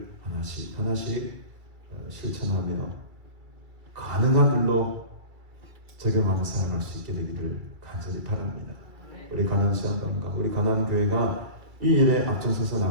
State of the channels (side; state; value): left; late; 2.3 ms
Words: 하나씩 실천하며 가능한 일로 적용하며 살아갈 수 있게 되기를 간절히 바랍니다. 우리 가난 시안당과 우리 가난 교회가 이 일에 앞장서서